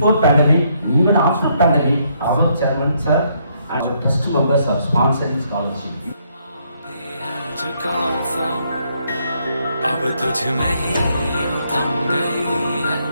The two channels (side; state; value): both; inverted; correlation -0.72